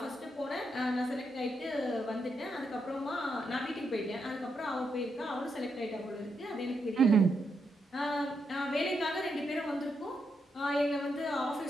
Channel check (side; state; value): both; normal; correlation 0.82